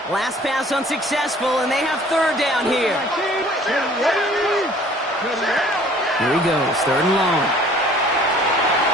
Last pass unsuccessful, and they have 3rd down here. Here he goes, 3rd and long.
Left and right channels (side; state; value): both; normal; correlation 0.52